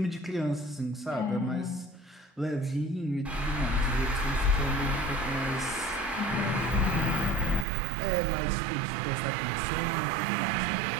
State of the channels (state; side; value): drops out; left; at 7.7 s